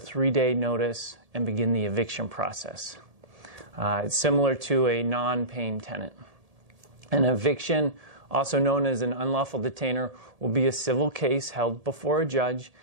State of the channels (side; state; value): left; late; 1.7 ms